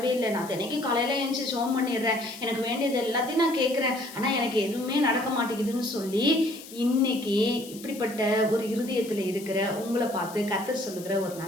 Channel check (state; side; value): noise; left; hiss, 16 dB below the sound